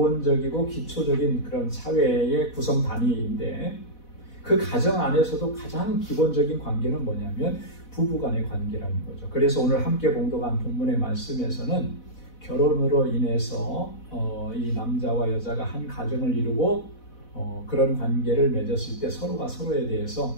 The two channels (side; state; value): right; late; 4.1 ms